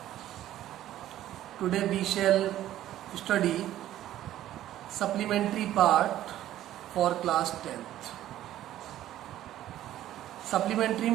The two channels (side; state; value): left; quieter; 13.0 dB